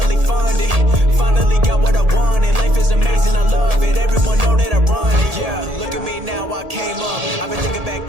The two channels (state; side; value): late; left; 1.8 ms